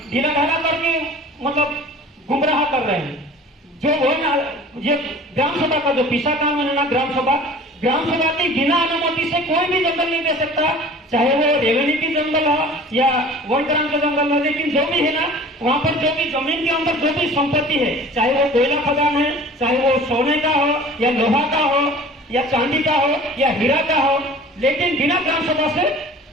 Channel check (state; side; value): normal; both; correlation 0.43